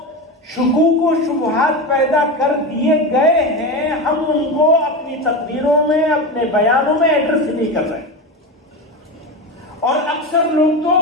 شکوک و شبہات پیدا کر دیے گئے ہیں، ہم ان کو اپنی تقریروں میں، اپنے بیانوں میں ایڈریس نہیں کر رہے، اور اکثر لوگ تو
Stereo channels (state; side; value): normal; both; correlation 0.21